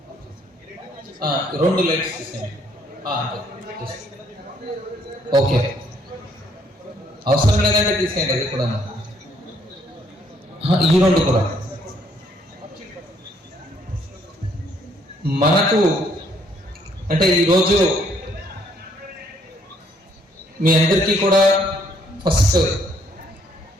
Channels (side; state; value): both; normal; correlation 0.67